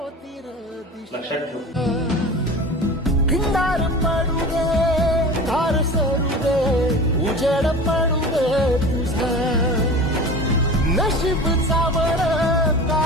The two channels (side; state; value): both; normal; correlation 0.35